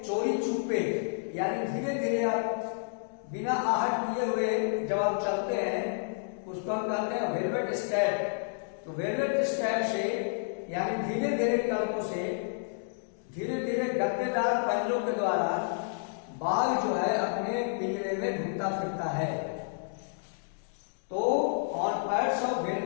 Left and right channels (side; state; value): right; silent; digital silence